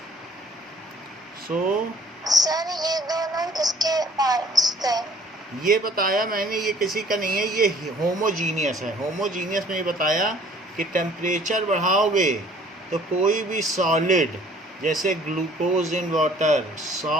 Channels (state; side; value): normal; both; correlation 0.55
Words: So sir ये दोनों किसके पार्ट्स थे? ये बताया मैंने, ये किसी का नहीं है, ये होमोजीनियस है। होमोजीनियस में ये बताया कि टेम्परेचर बढ़ाओगे तो कोई भी सॉलिड, जैसे glucose in water,